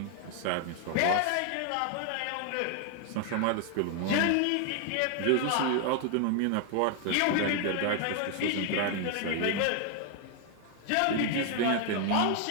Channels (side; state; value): both; different; correlation 0.00